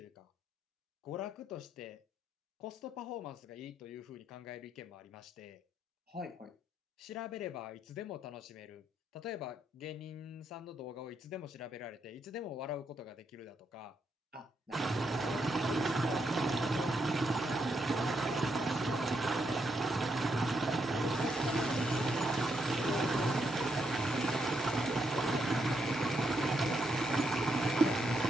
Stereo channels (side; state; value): both; normal; correlation 0.78